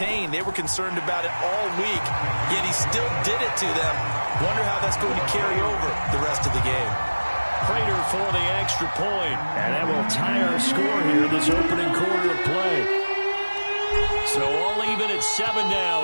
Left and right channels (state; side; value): inverted; both; correlation -1.00